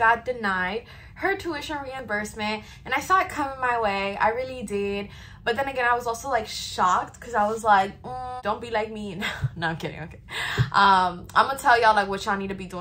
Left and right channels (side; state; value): both; identical; correlation 1.00